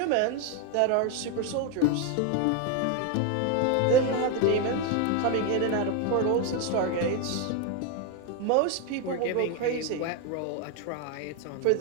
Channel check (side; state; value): both; different; correlation 0.02